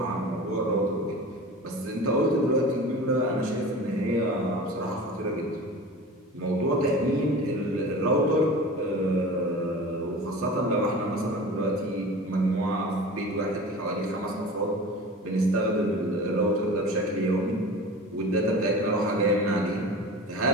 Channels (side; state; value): both; normal; correlation 0.36